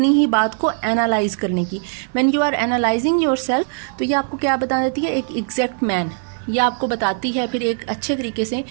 ही बात को एनालाइज करने की। When you are analysing yourself, तो ये आपको क्या बता देती है, एक एग्जैक्ट मैन। ये आपको बताती है फिर एक अच्छे तरीके से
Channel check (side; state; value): left; silent; 66 dB below the other